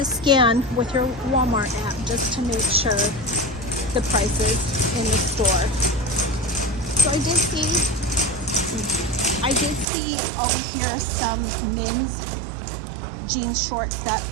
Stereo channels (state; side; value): drops out; left; at 9.9 s